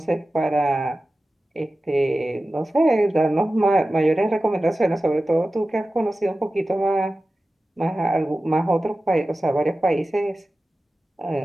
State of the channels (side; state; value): both; normal; correlation 0.95